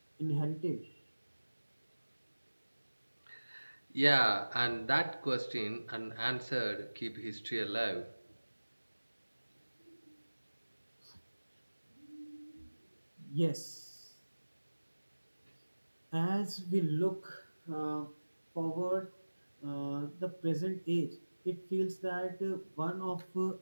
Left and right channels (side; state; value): both; inverted; correlation -1.00